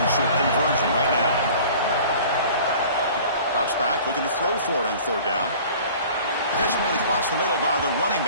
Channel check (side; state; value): both; inverted; correlation -0.45